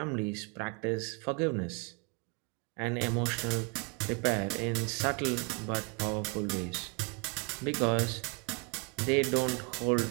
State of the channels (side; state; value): left; quieter; 32.2 dB